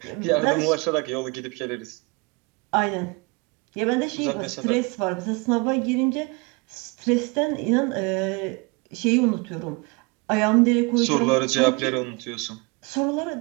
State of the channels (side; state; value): left; quieter; 29.2 dB